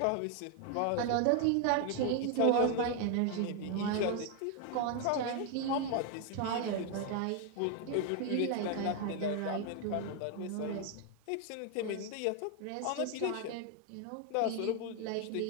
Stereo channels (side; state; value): both; different; correlation 0.00